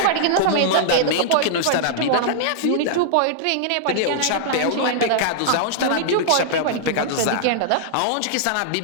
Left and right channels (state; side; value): different; both; correlation -0.01